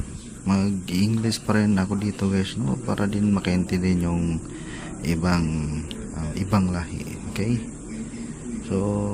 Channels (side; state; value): both; identical; correlation 1.00